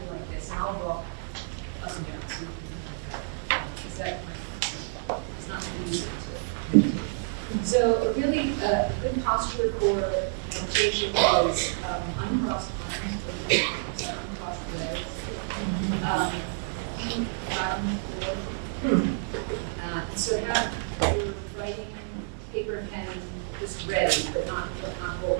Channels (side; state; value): left; silent; 59 dB below the other